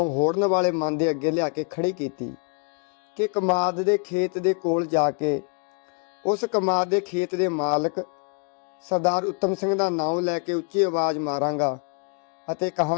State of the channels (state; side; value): quieter; right; 38.0 dB